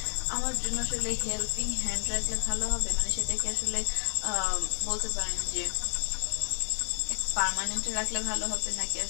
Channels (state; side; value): silent; right; digital silence